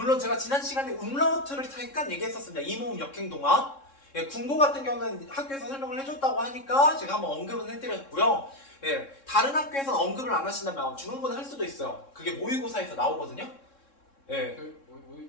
제가 지난 시간에 음라우트를 잠깐 얘기했었습니다. 이모음 역행동화. 예, 군고 같은 경우는 학교에서 설명을 해줬다고 하니까 제가 한번 언급은 해드렸고요. 예, 다른 학교에서는 언급을 안 하신다면 중간고는 할 수도 있어요. 그게 모의고사에서 나오거든요. 예.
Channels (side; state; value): right; late; 3.7 ms